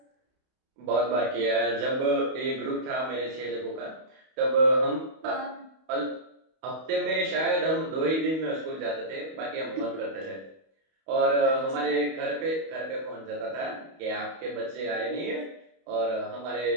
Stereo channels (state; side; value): late; left; 31 ms